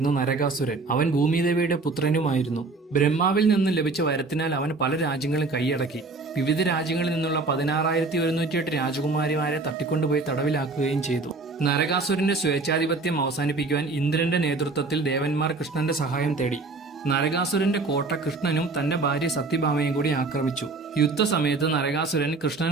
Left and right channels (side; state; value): left; quieter; 3.7 dB